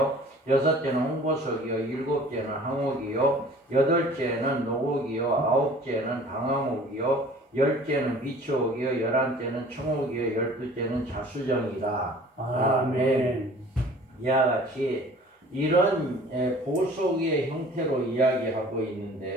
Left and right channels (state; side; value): normal; both; correlation 0.48